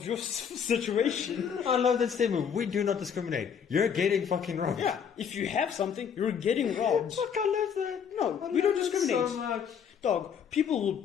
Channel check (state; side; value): quieter; right; 7.4 dB